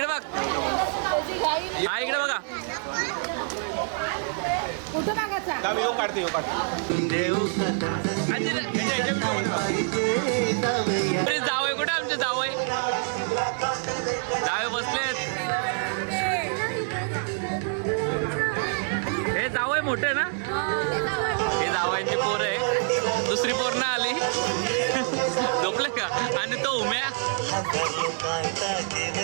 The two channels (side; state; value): left; silent; 61 dB below the other